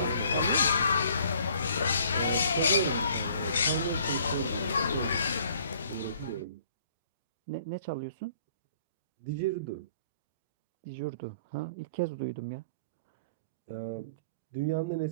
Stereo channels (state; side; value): inverted; both; correlation -0.57